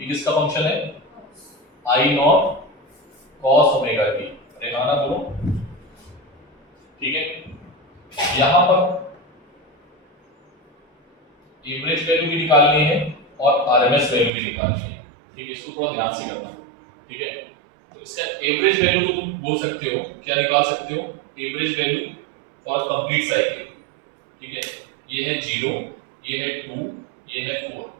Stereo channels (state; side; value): drops out; left; at 14.3 s